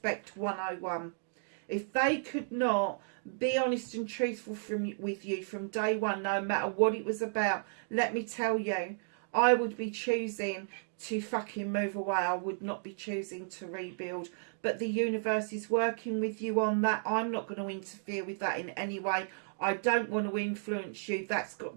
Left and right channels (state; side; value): silent; left; digital silence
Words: 101. If they could not be honest and truthful with you from day one, no matter what it was about, let me tell you, I would be choosing to fucking move away. I would not be choosing to rebuild. But the universe is working with you on that. I'm not going to interfere with that in any way. I don't want to influence you. That's